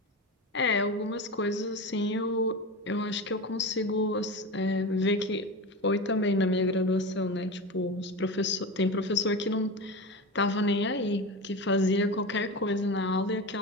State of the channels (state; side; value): normal; both; correlation 0.25